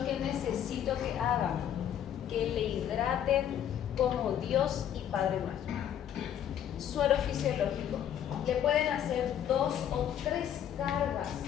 que necesito que hagan? Que le hidraten como Dios y Padre Nuestro. Suero fisiológico. Le pueden hacer 2 o 3 cargas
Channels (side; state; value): right; quieter; 10.0 dB